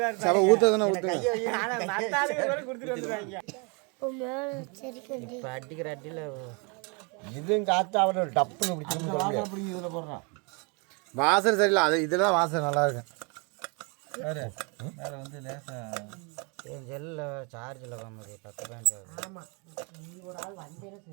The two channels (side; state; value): left; quieter; 33.0 dB